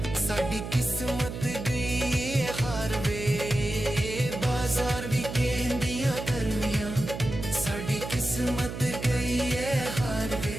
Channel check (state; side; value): noise; right; hum, 7 dB below the sound